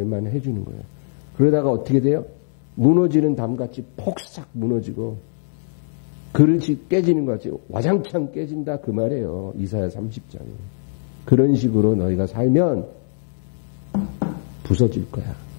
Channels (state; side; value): silent; right; digital silence